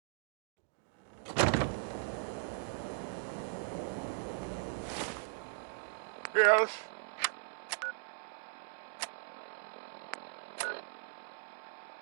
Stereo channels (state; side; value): silent; left; digital silence